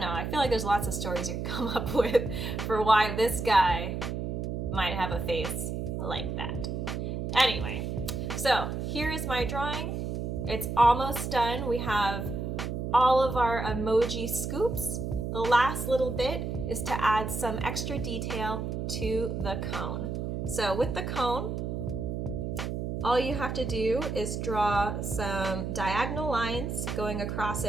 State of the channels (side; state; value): right; noise; hum, 3 dB below the sound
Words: know. I feel like there's lots of stories you can come up with for why this guy might have a face like that. Anyway, so here is my drawing. It's almost done. We have all of our emoji scoops. The last little bit is to add some extra detail to the cone. So with the cone, all you have to do is draw some diagonal lines going across